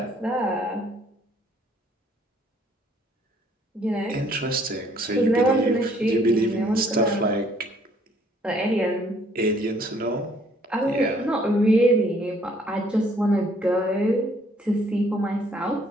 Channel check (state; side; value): normal; both; correlation 0.63